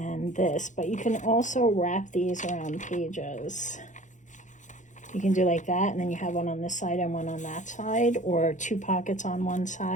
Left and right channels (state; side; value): late; right; 0.36 ms